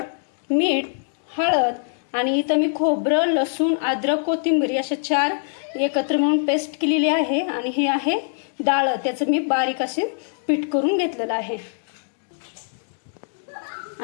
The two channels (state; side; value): silent; right; digital silence